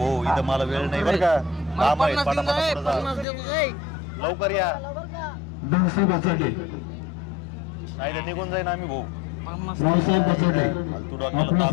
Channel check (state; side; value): drops out; right; at 3.2 s